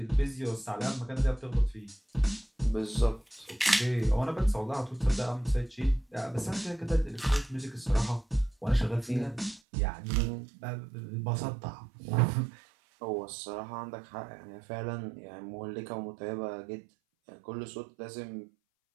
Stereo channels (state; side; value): drops out; left; at 9.6 s